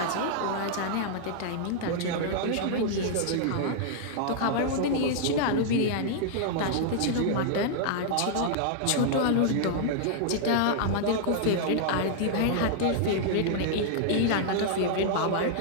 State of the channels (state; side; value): different; both; correlation -0.01